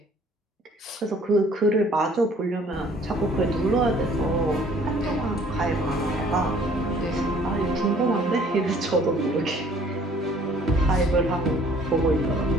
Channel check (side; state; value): both; normal; correlation 0.57